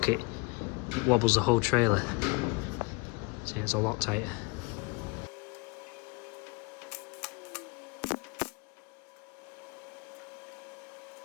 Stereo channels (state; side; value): quieter; right; 27.3 dB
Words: it, it wobbles the whole trailer. So it's a lot tighter.